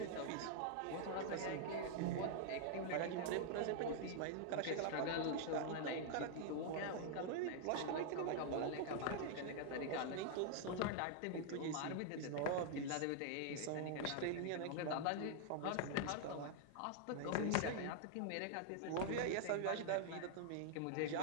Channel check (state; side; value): different; both; correlation -0.01